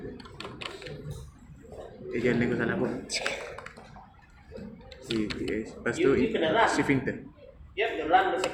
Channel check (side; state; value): both; identical; correlation 1.00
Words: Jangan length kau salah pun. Lepas tu You kena run. shift enter. Yep, you run the